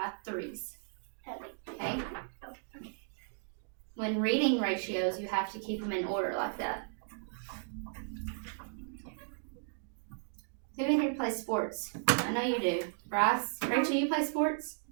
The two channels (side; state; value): left; silent; digital silence